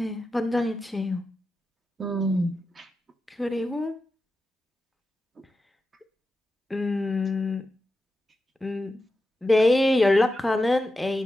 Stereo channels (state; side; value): normal; both; correlation 0.91